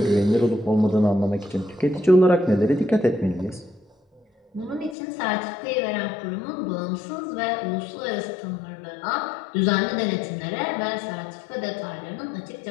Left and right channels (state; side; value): drops out; right; at 5.0 s